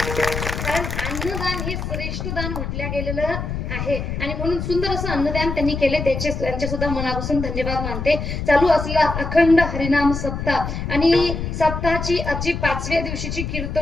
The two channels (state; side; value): noise; left; rumble, 4 dB below the sound